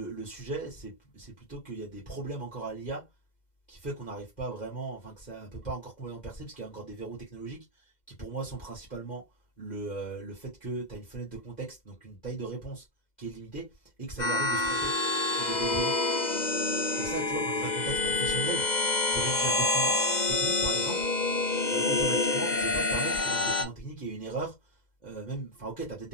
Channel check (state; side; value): late; right; 2.0 ms